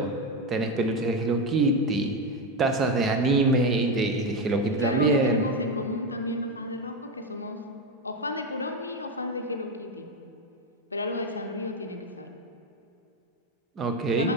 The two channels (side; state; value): both; normal; correlation 0.12